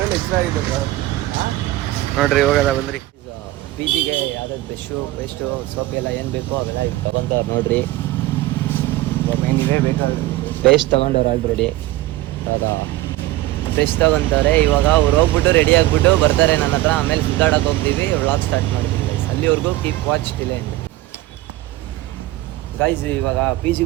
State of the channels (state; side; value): quieter; left; 16.9 dB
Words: ಹೆಚ್ಚಾಗಿದೆ ಬ್ರೋ. ನೋಡ್ರಿ, ಹೋಗೋದ ಬಂದ್ರಿ. ಪಿ ಜಿಗೆ ಯಾವ್ದಾದ್ರು ಬ್ರಷು, ಪೇಸ್ಟು, ಸೋಪ್ ಎಲ್ಲ ಏನು ಬೇಕೋ ಅವೆಲ್ಲ ಈಗ ತೊಗೊತಾರೆ ನೋಡ್ರಿ. ಏನಿದೆ ಬೇಕಾದ್ರೆ ಪೇಸ್ಟ್ ತೊಗೊಂಡವ್ರು ಆಲ್ರೆಡಿ. ಇವಾಗ ಪೇಸ್ಟ್ ತೊಗೊತಾರೆ. ಇವಾಗ ಅವ್ರು ಹೋಗ್ಬಿಟ್ಟು ರೆಡಿ ಆಗಿಬಿಟ್ಟು ಬರ್ತಾರೆ ನನ್ನ ಹತ್ರ. ಆಮೇಲೆ ಸುತ್ತಾಡಕ್ಕೆ ಹೋಗ್ತೀವಿ, ವ್ಲಾಗ್ ಸ್ಟಾರ್ಟ್ ಮಾಡ್ತೀವಿ ಗೈಸ್. ಅಲ್ಲಿವರೆಗೂ keep watch till end guys. ಇವಾಗ ಪಿ